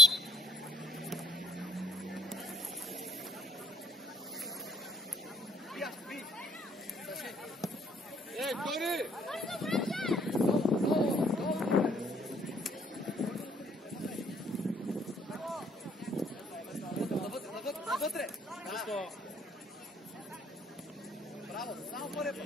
Ей, Тори! Навътре! Браво, само първия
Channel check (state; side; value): normal; both; correlation 0.61